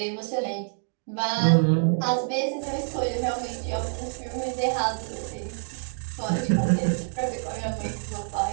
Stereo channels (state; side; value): silent; left; digital silence